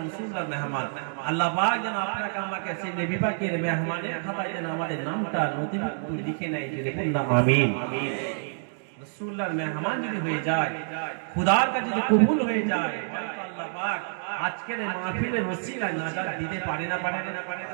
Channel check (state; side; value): silent; left; digital silence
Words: রাসূলুল্লাহর মেহমান। আল্লাহ পাক যেন আপনাকে আমাকে সেই নবী পাকের মেহমানের খাতায় যেন আমাদের নামটা নথিভুক্ত লিখে নেয়। যদি বলুন আমিন। রাসূলুল্লাহর মেহমান যদি হয়ে যায়, খোদার কাছে যদি কবুল হয়ে যায়, আল্লাহ পাক আজকের এই মাহফিলের ওসিলায় নাজাত দিতে পারে না?